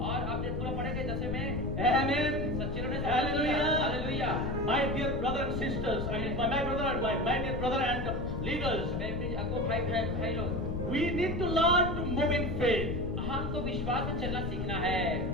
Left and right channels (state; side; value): noise; left; rumble, 5 dB below the sound